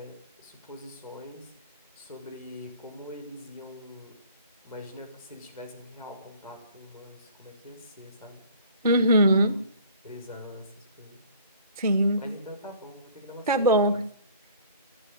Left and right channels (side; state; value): both; inverted; correlation -0.50